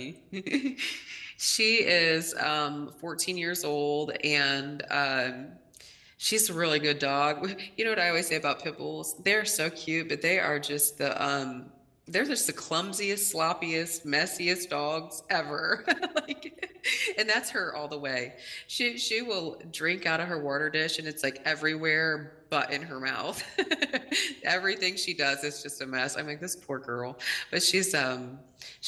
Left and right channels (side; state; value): both; identical; correlation 1.00